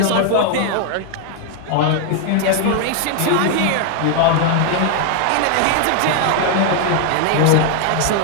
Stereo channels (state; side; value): different; both; correlation 0.00